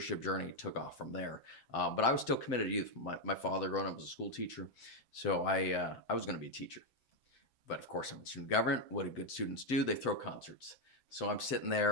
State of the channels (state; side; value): late; right; 7.7 ms